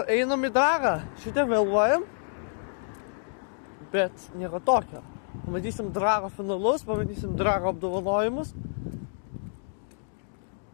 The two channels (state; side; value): silent; right; digital silence